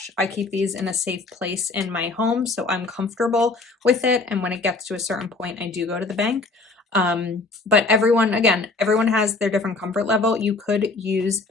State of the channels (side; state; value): right; quieter; 3.6 dB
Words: I keep these in a safe place in my home, so I'm comfortable with it. And when it gets to a certain point, I do go to the bank. But everyone has their different comfort level. You could use